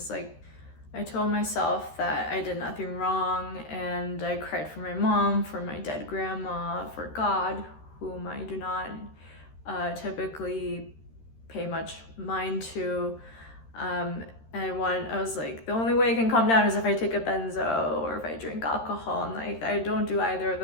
like I told myself that I did nothing wrong, and I cried for my mom, for my dead grandma, for God, whom I do not typically pay much mind to. And I was like, the only way I can calm down is if I take a benzo or if I drink alcohol, and like I don't do either of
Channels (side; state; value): right; late; 13 ms